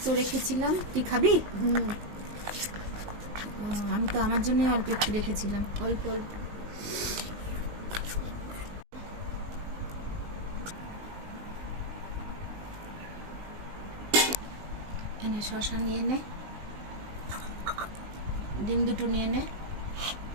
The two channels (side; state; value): left; late; 19 ms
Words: রেখেছিলাম, তুই খাবি? আমি তো আমার জন্য অল্প একটু রেখেছিলাম, অল্প অল্প। এনে শসা নিয়ে নে, ডিম দুটো নিয়ে নে,